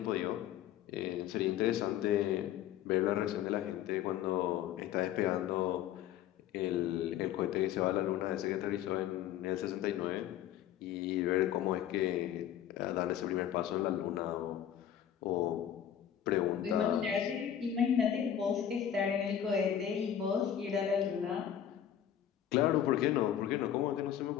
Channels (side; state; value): right; quieter; 10.2 dB